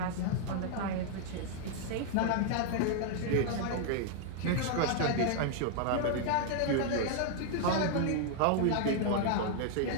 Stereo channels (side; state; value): both; different; correlation 0.00